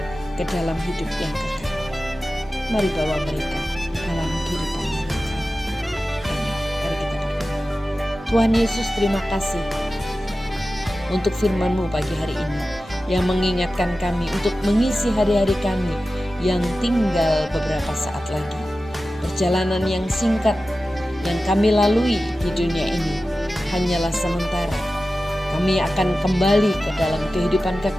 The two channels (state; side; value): normal; both; correlation 0.94